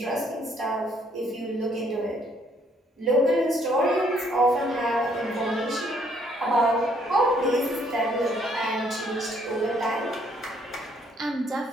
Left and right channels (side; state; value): both; normal; correlation 0.66